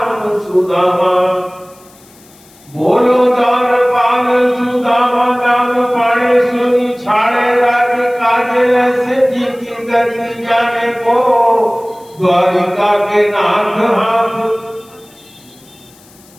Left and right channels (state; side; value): noise; left; hiss, 27 dB below the sound